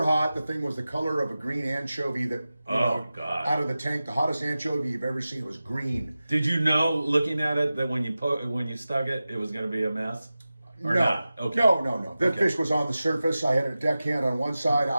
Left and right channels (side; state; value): both; inverted; correlation -0.95